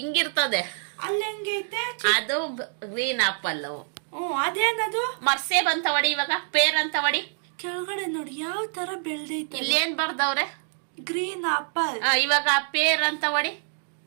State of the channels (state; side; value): silent; left; 61 dB below the other